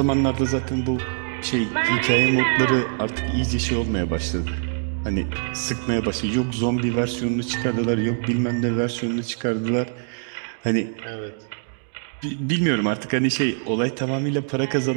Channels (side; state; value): left; silent; digital silence